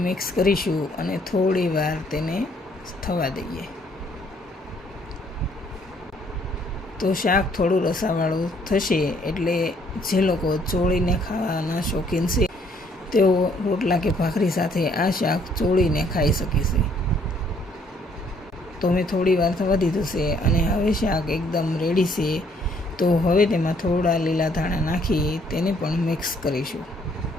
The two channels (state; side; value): normal; both; correlation 0.65